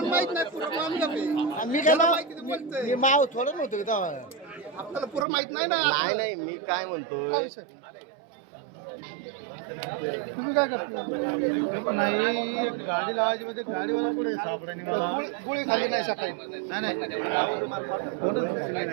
माहित नाही पूर्ण आम्ही काय माहिती ते बोलतोय मी माव थोडं नव्हतं आपल्याला पूर्ण माहित नाही ना नाही नाही मी काय म्हणतो तुम्ही काय करता नाही गाडी लावायची म्हणजे गाडीवाला पुढे सापडाने मला गोळी खाली नाही सकाळी नाही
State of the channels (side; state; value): left; drops out; at 5.2 s